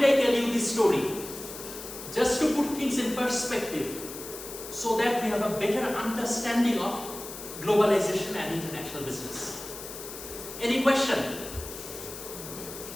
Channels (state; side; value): noise; left; hiss, 11 dB below the sound